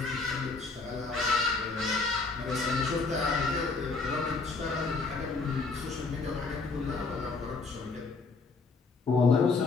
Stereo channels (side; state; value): right; quieter; 4.1 dB